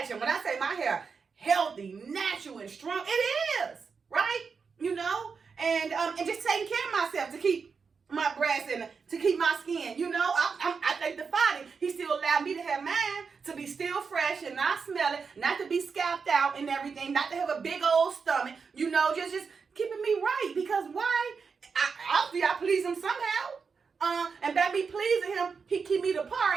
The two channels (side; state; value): left; quieter; 5.4 dB